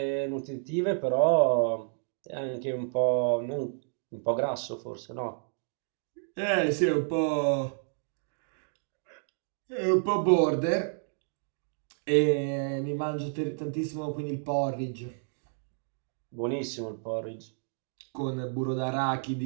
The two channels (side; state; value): left; silent; digital silence